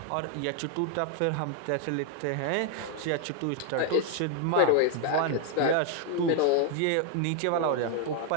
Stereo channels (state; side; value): different; both; correlation 0.00